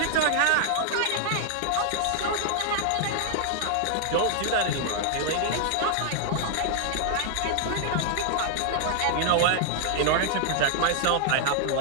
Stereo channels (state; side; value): different; both; correlation -0.01